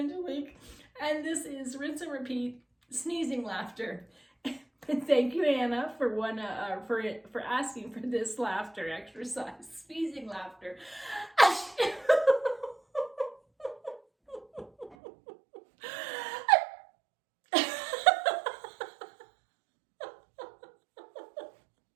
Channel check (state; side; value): drops out; left; at 15.0 s